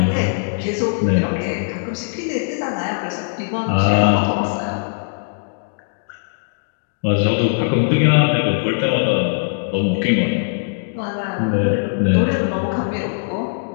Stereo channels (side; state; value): right; silent; digital silence